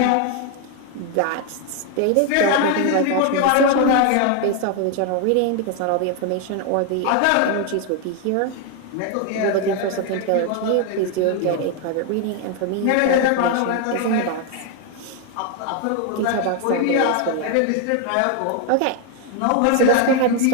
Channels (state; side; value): different; both; correlation 0.01